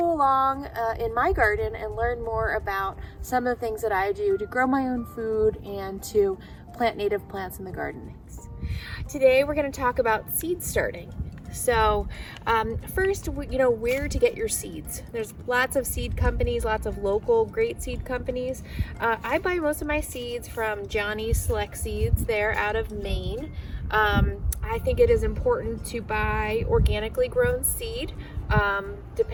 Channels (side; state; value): both; identical; correlation 1.00